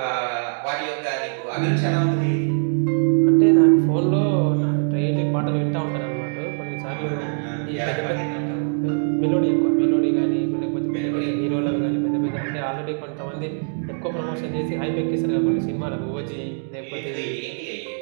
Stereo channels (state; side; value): silent; left; digital silence